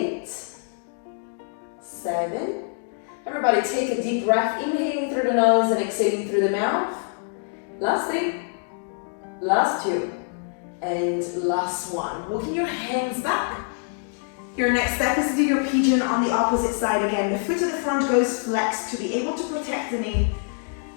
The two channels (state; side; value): silent; right; 56 dB below the other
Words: 7. Everybody take a deep breath, inhaling through the nose and exhaling through the mouth. Last thing, last two, and last one. Walking your hands back. Your next step is to do your pigeon on the opposite side again. The foot to the front goes flexed to be able to protect the knee.